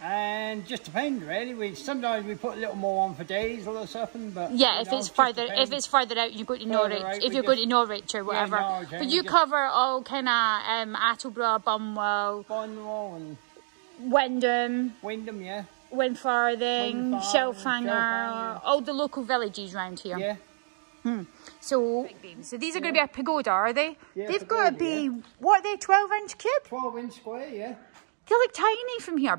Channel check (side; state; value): left; silent; digital silence